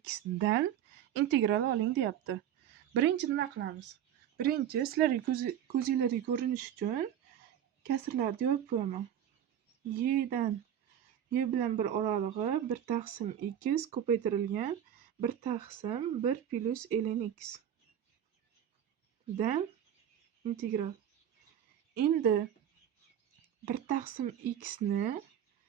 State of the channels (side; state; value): left; quieter; 10.0 dB